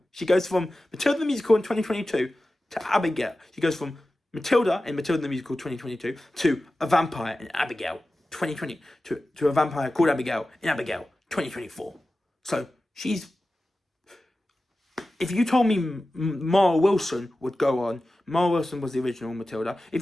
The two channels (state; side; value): normal; both; correlation 0.95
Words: She goes from Matilda the Musical in 2022 to Abigail. She goes from Matilda in Matilda the Musical 2022 to a vampire in Abigail 2020 to a vampire called Abigail in Abigail 2024. So she's... If you told me Mara Wilson would go on, Mara Wilson was the original Matilda.